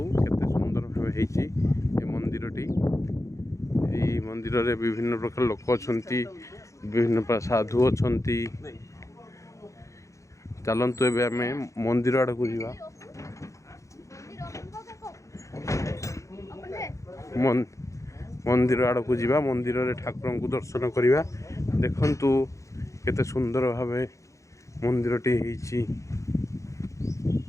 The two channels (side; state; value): right; late; 0.15 ms